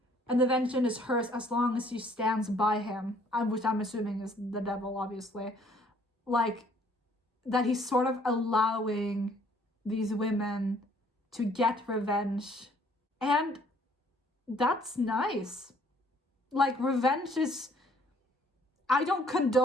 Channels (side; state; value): both; normal; correlation 0.61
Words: "And the vengeance is hers as long as she stands by him," which I'm assuming is the devil, obviously, like that he's sort of allowing these women to get revenge. And that's nice. Like, revenge is, I don't